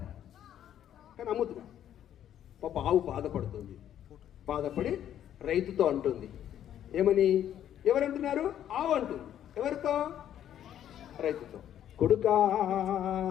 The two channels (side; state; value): right; quieter; 10.7 dB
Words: కానీ అమ్ముతున్నా. పాప ఆవు బాధపడుతుంది. బాధపడి రైతుతో అంటుంది ఏమని? ఎవరంటున్నారు? ఆవు అంటుంది. ఎవరితో? రైతుతో. కొడుకా